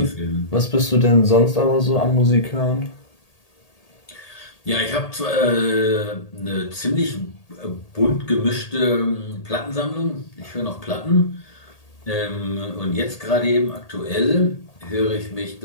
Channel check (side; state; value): right; late; 1.8 ms